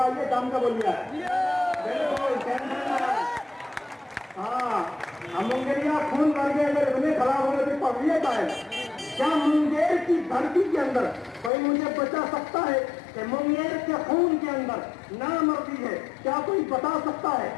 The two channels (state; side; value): drops out; right; at 11.5 s